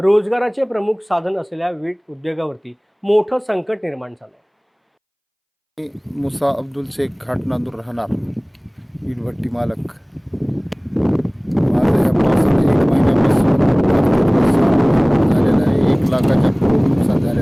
प्रमुख साधन असलेल्या वीट उद्योगावरती मोठं संकट निर्माण झालंय। मुसा अब्दुल शेख घाटनांदूर राहणार वीटभट्टी मालक। माझ्या या पावसाने 1 महिन्यापासून झालेलं आहे। 1 लाखाच्या पुढे नुकसान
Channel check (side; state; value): both; identical; correlation 1.00